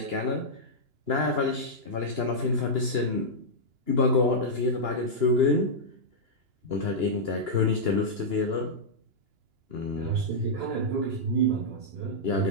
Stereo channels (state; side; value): late; left; 2.9 ms